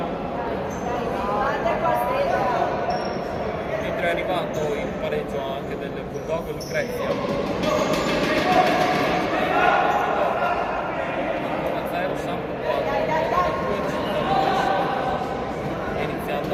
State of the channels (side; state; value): both; identical; correlation 1.00